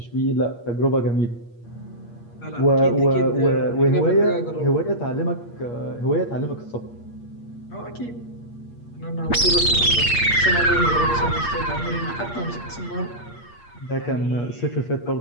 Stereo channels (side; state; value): right; late; 8.5 ms